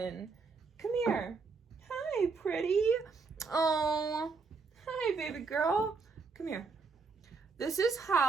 Come here. Hi, pretty. Oh, hi, baby girl. Come here. This is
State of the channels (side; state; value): left; quieter; 4.5 dB